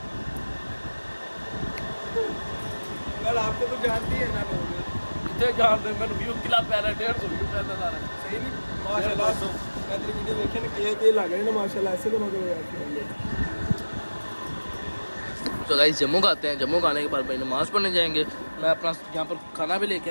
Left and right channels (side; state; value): both; inverted; correlation -1.00